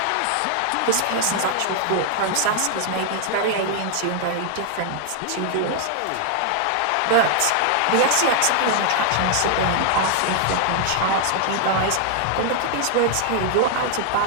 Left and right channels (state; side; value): different; both; correlation 0.00